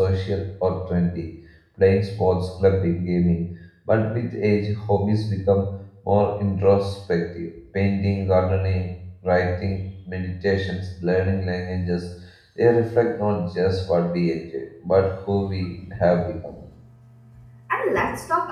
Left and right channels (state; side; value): identical; both; correlation 1.00